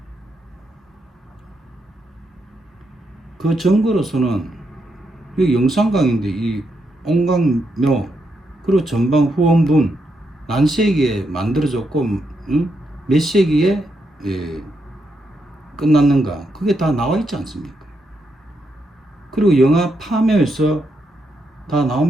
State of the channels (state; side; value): normal; both; correlation 0.81